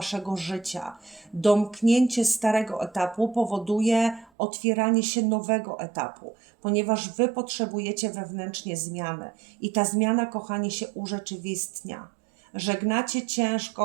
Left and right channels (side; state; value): left; drops out; at 4.3 s